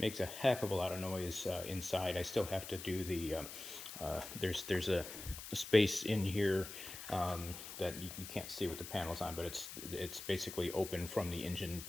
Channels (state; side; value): noise; left; hiss, 10 dB below the sound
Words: a heck of a lot of noise inside. I still have to do the there's a space in here that you can't see with the panels on, but it's basically open from the engine